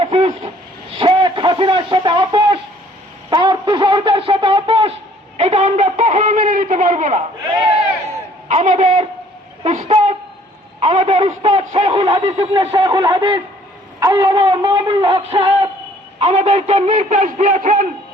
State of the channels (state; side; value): normal; both; correlation 0.58